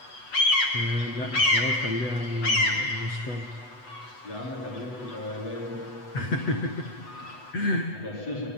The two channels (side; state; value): right; late; 8.1 ms